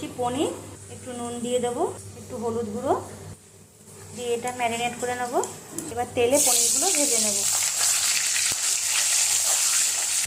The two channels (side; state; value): both; identical; correlation 1.00